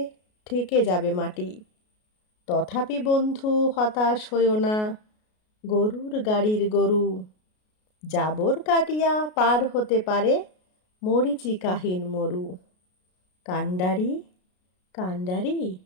ঠেকে যাবে মাটি। তথাপি বন্ধু হতাশ হইও না, গরুর গাড়ির গরু, জাবর কাটিয়া পার হতে পারে মরীচিকাহীন মরু। কান্ডারি কান্ডারি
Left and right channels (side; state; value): right; late; 33 ms